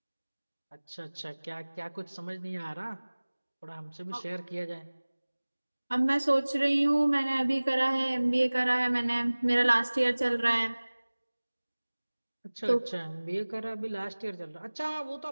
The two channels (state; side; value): inverted; both; correlation -1.00